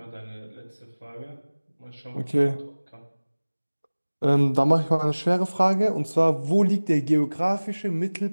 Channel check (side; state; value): both; inverted; correlation -1.00